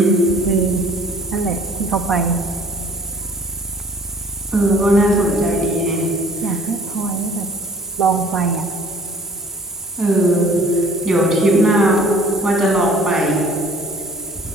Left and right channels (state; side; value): normal; both; correlation 0.53